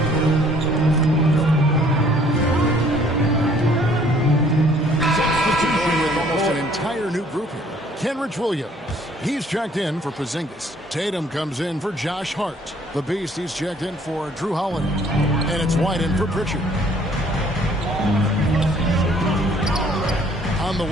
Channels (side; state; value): both; normal; correlation 0.59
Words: Kenrich Williams. He's checked in for Porzingis. Tatum comes in for Josh Hart. The Beast, he's checked in for Drew Holiday. And it's White in for Pritchard. On the